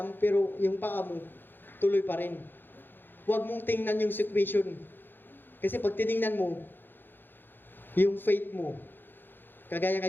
pero yung paa mo, tuloy pa rin. Huwag mong tingnan yung situation. Kasi pag tinignan mo, yung faith mo, kagaya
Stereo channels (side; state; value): right; late; 0.097 ms